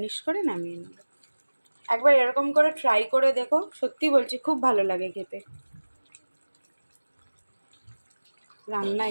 করে নামিয়ে নেব। একবার এরকম করে ট্রাই করে দেখো, সত্যি বলছি খুব ভালো লাগে খেতে। রান্না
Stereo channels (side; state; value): both; inverted; correlation -1.00